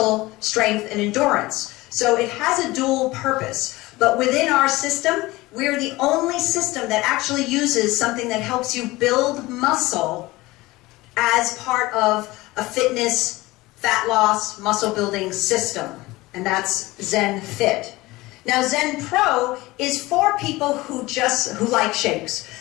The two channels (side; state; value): right; quieter; 20.1 dB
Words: strength and endurance. So it has a dual purpose. But within our system, we're the only system that actually uses something that helps you build muscle as part of a fitness, fat loss, muscle building system. And that's Zen Fit. Now Zen Pro is for people who like shakes.